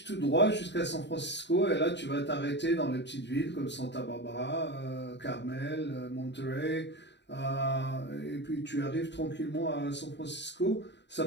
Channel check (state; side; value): late; right; 0.51 ms